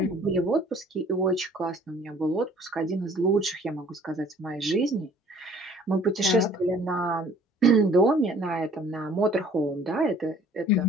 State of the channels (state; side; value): normal; both; correlation 0.55